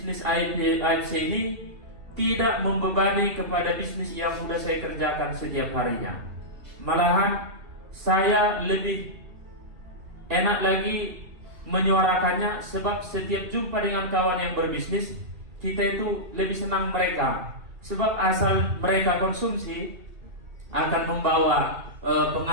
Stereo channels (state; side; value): late; left; 2.7 ms